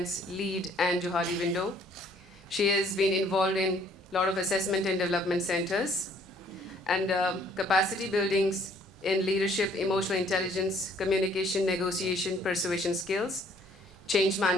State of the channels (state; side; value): normal; both; correlation 0.61